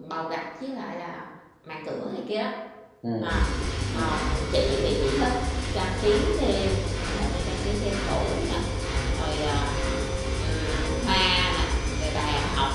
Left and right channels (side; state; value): both; identical; correlation 1.00